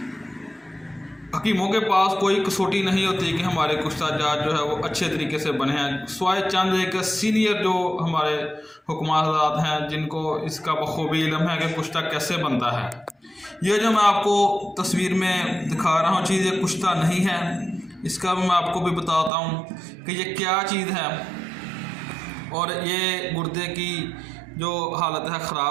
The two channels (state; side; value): drops out; left; at 19.3 s